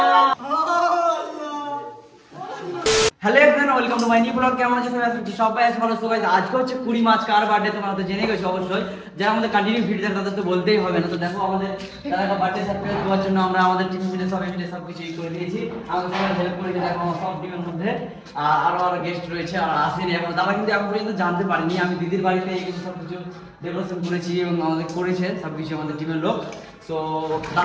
hello everyone, welcome to my new blog. কেমন আছো সবাই? আছো ভালো সবাই? আজকে হচ্ছে 20 মার্চ, কার বার্থডে তোমরা তো জেনে গেছো অবশ্যই। যারা আমাদের কন্টিনিউ ভিডিও দেখে তাদের তো বলতেই হবে না। তো দেখো আমাদের তারা বার্থডে সারপ্রাইজ দেওয়ার জন্য আমরা আমাদের টিম মিলে সবাই মিলে সবকিছু করে দিয়েছি। আমাদের সবাই হেল্প করেছে। দেখো সব টিমের মধ্যে আরো গেস্ট রয়েছে আর আসেনি এখন। তারা কিন্তু এখন পর্যন্ত জানতে পারিনি আমি দিদির বাড়িতে এই কিন্তু সবকিছু ডেকোরেশন করেছি এবং আমাদের করেছে সবকিছু আমাদের টিমের লোক। সো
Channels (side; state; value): both; identical; correlation 1.00